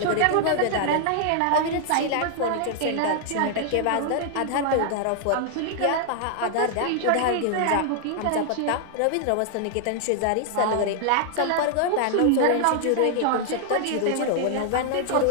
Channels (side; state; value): both; different; correlation 0.00